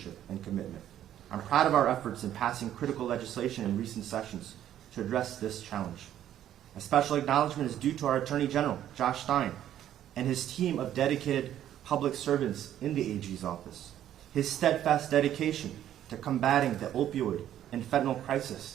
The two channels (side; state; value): left; quieter; 11.4 dB